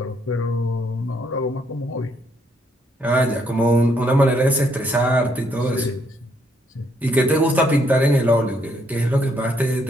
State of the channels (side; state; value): both; normal; correlation 0.72